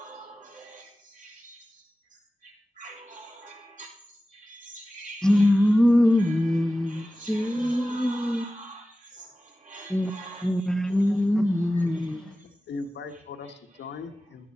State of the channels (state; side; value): normal; both; correlation 0.96